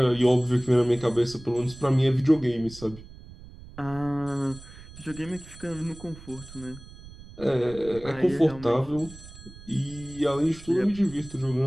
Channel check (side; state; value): right; noise; rumble, 18 dB below the sound